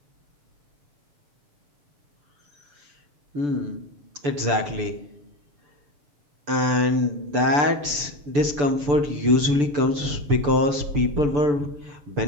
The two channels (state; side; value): late; left; 6.9 ms